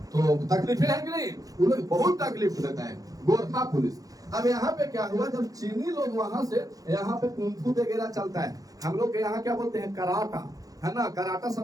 तो तकलीफें है कि नहीं? वो लोग बहुत तकलीफ देता है गोरखा पुलिस। अब यहाँ पे क्या हुआ, जब चीनी लोग वहां से, यहाँ पे कुंफू वगैरह चलता है, हम लोग के यहाँ क्या बोलते हैं? कराटा, है ना। कराटा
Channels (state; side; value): late; left; 0.17 ms